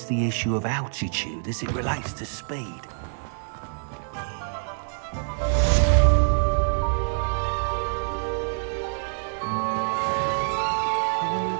the issue of altitude as it relates to speed?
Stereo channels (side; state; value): left; silent; 59 dB below the other